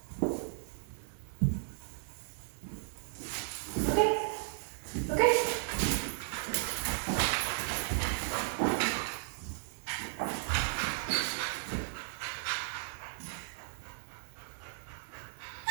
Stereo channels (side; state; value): left; silent; 54 dB below the other